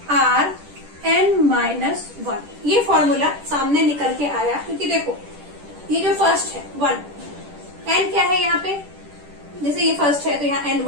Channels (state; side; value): late; left; 10 ms